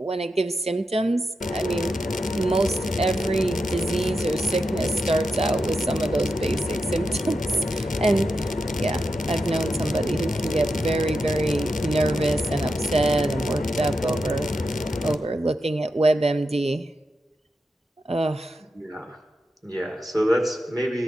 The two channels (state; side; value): normal; both; correlation 0.88